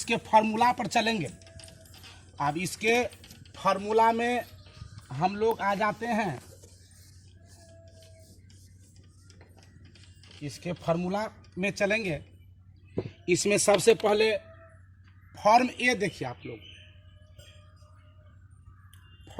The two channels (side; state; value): both; identical; correlation 1.00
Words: फार्मूला पर चलेंगे। अब इसके फार्मूला में हम लोग आ जाते हैं। इसके फार्मूला में चलेंगे। इसमें सबसे पहले फॉर्म ए देखिए आप लोग।